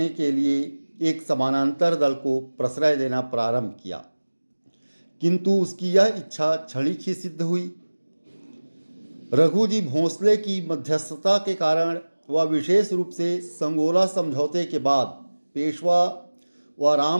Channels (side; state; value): both; inverted; correlation -1.00